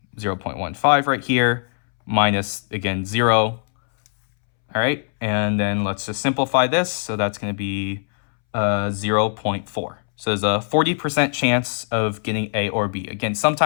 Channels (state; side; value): silent; right; 65 dB below the other